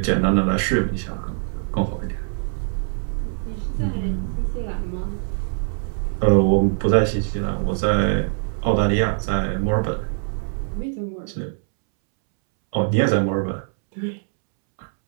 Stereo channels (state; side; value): silent; left; 64 dB below the other